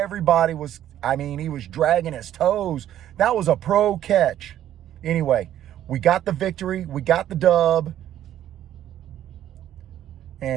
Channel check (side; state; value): left; quieter; 11.6 dB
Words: was, he was dragging his toes. That was a pro catch. Anyway, we got the victory. We got the dub.